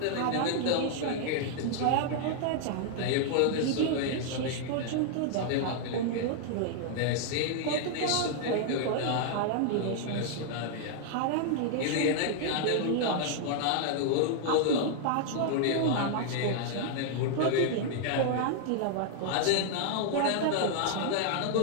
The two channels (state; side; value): different; both; correlation 0.00